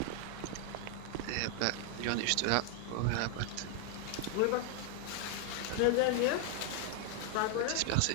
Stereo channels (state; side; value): different; both; correlation 0.00